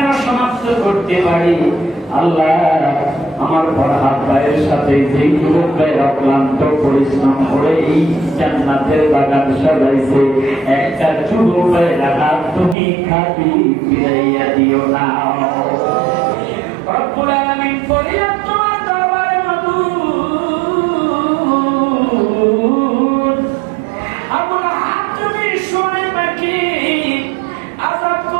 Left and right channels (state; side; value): drops out; left; at 12.8 s